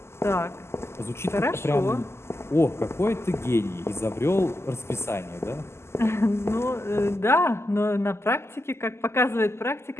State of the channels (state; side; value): late; right; 0.12 ms